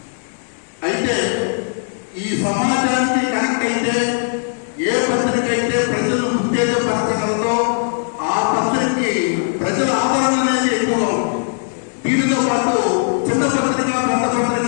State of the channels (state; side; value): silent; right; digital silence